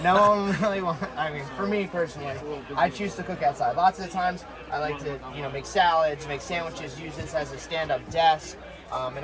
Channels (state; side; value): identical; both; correlation 1.00